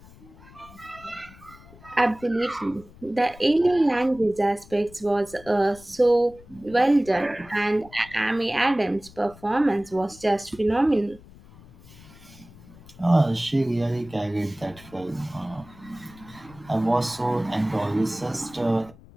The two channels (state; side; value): noise; left; rumble, 22 dB below the sound